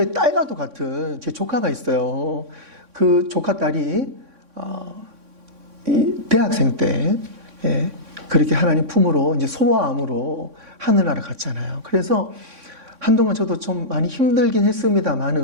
딸과도 같은 제 조카가 있어요. 그 조카 딸이 대학생 때 그렇게 하나님 품으로 이제 소아암으로 하늘나라 갔잖아요. 그래서 한동안 저도 좀 많이 힘들긴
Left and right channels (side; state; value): left; late; 3.6 ms